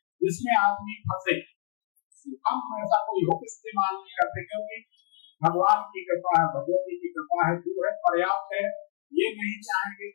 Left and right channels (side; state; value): right; silent; digital silence